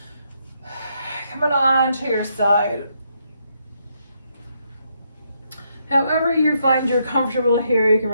Coming on to your side. However you find you're comfortable here, you can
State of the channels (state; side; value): inverted; both; correlation -0.77